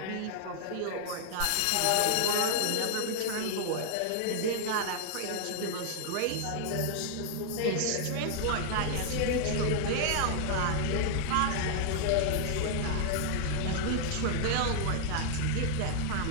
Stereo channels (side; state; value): both; different; correlation 0.00